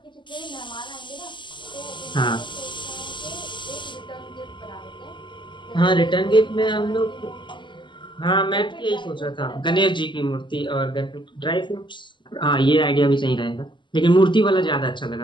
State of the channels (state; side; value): late; right; 0.23 ms